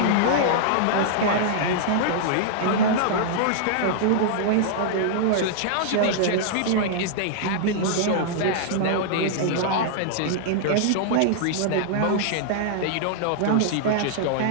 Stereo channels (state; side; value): different; both; correlation -0.01